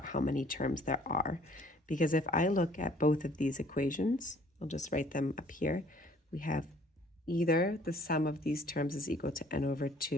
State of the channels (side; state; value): both; normal; correlation 0.57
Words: how many terms there are. Because if I look at both of these equations, I'll just write them up here. We have either the sum of these terms is equal to n over